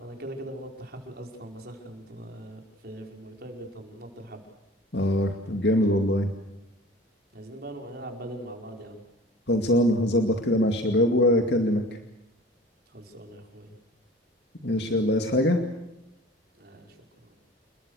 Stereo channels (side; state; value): both; normal; correlation 0.43